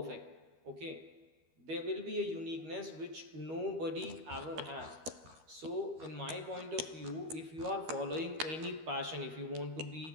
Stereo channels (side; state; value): left; late; 13 ms